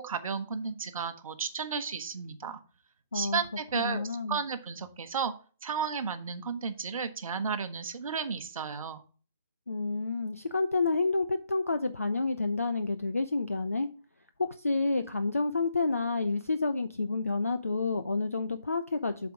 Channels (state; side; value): inverted; both; correlation -0.69